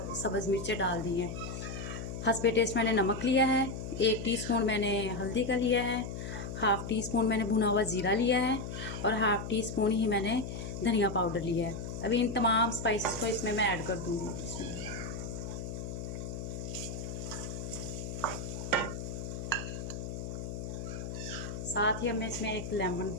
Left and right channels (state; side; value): noise; left; hum, 6 dB below the sound